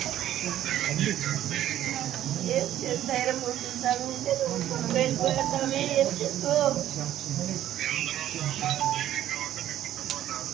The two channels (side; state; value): left; quieter; 12.2 dB